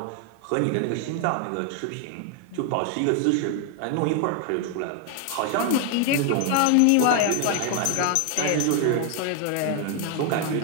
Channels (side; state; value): both; different; correlation 0.00